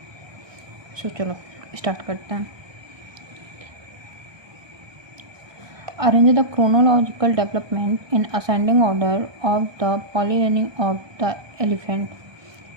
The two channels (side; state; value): left; late; 1.2 ms